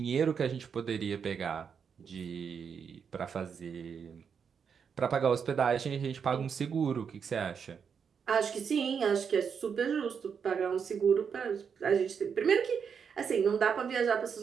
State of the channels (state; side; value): quieter; left; 6.7 dB